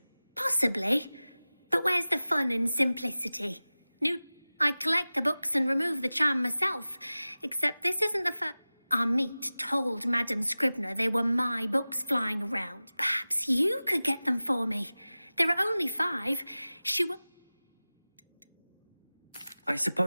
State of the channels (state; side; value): inverted; both; correlation -0.97